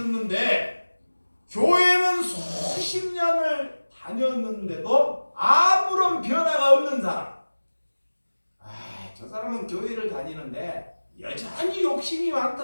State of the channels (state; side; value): inverted; both; correlation -1.00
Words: 교회는 수십 년을 다녔는데도 아무런 변화가 없는 사람. 저 사람은 교회를 다니는데 여전히 욕심이